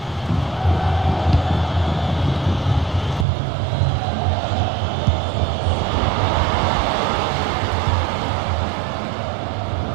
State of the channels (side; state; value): left; drops out; at 3.2 s